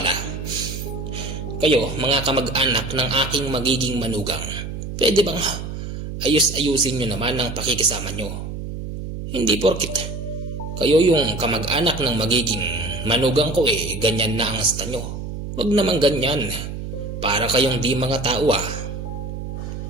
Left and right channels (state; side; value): noise; right; hum, 7 dB below the sound